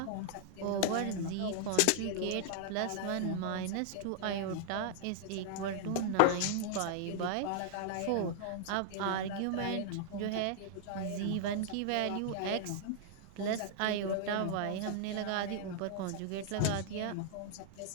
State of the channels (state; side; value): different; both; correlation -0.01